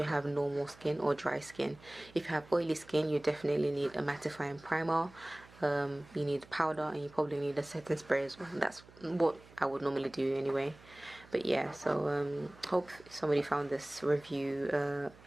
have normal skin or dry skin. If you have oily skin, you definitely need a mattifying primer. You need powder, and you probably need a setting spray as well. That's what I would normally do anyway. But yeah, so hope somebody found this review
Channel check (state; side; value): noise; right; hum, 23 dB below the sound